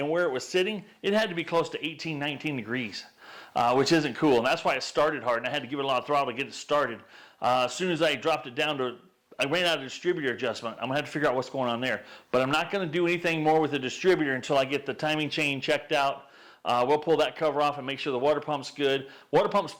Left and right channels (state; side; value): identical; both; correlation 1.00